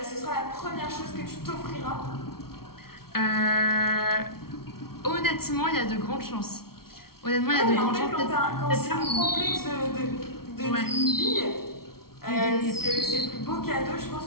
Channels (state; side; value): late; right; 0.94 ms